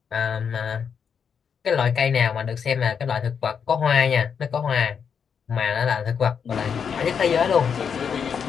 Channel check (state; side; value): quieter; right; 6.9 dB